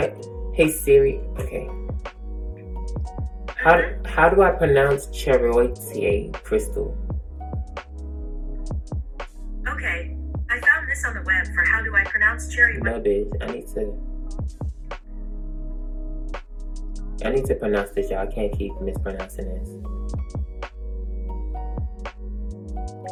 hey Siri. Okay. How do I pronounce chariote, Crystal? Okay, I found this on the web for how do I pronounce chariote. No, bitch. I need to pronounce this, y'all. I can't keep mispronouncing this.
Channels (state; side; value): identical; both; correlation 1.00